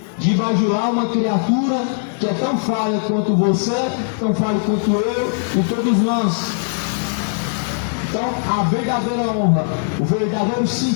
de bajular uma criatura que é tão falha quanto você, tão falha quanto eu e todos nós. Então a verdadeira honra, o verdadeiro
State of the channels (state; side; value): silent; right; digital silence